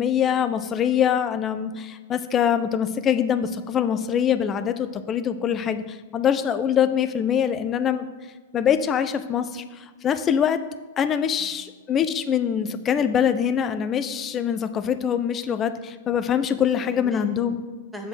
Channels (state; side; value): quieter; right; 8.1 dB